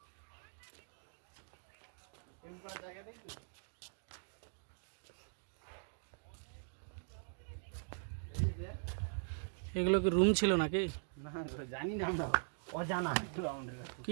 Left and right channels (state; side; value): silent; left; digital silence